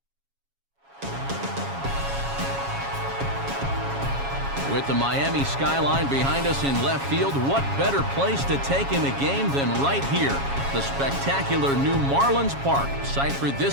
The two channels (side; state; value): left; late; 7.2 ms